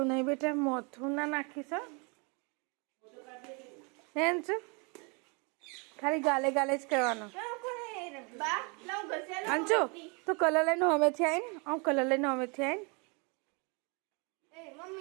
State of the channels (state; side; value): quieter; left; 32.5 dB